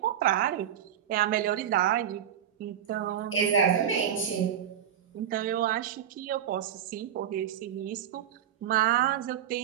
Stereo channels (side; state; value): left; quieter; 9.8 dB